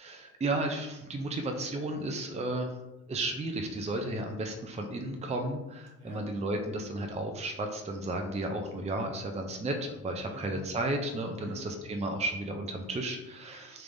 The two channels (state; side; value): normal; both; correlation 0.38